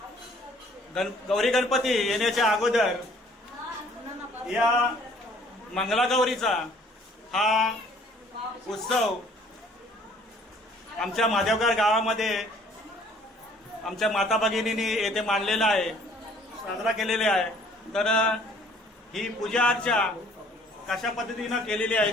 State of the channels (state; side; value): normal; both; correlation 0.57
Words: गौरी गणपती येण्याच्या अगोदर या मंगलागौरीचा हा उत्सव आमच्या माधवगाव गावामध्ये आमच्या माता भगिनींनी येथे मांडलेला आहे, साजरा केलेला आहे. तर ही पूजा अर्चा कशा पद्धतीनं केलेली